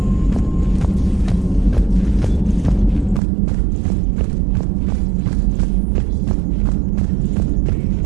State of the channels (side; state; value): left; drops out; at 3.2 s